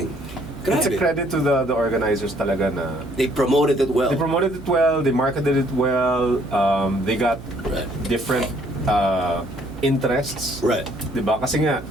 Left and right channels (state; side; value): noise; right; hum, 16 dB below the sound